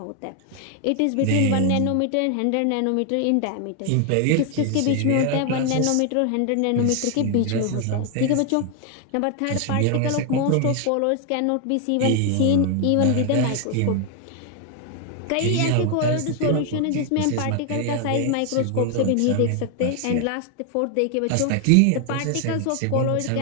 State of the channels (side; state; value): both; different; correlation 0.00